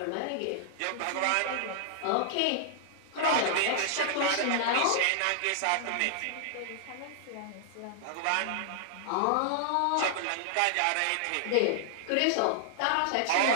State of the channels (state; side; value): different; both; correlation -0.01